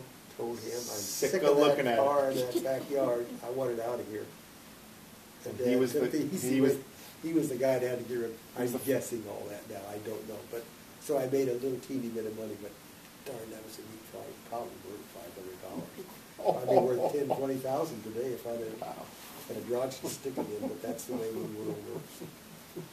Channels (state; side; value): identical; both; correlation 1.00